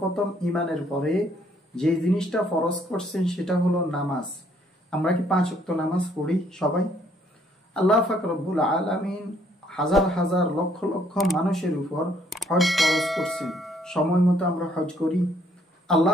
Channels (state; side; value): normal; both; correlation 0.66